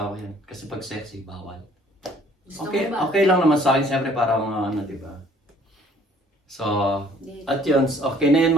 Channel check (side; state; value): both; normal; correlation 0.58